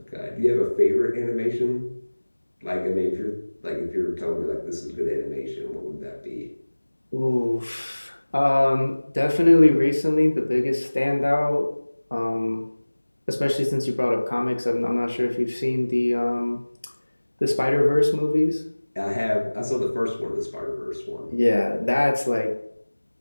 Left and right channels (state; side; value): inverted; both; correlation -1.00